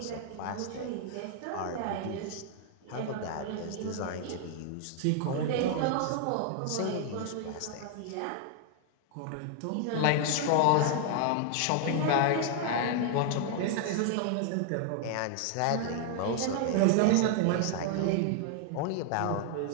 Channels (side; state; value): both; different; correlation 0.00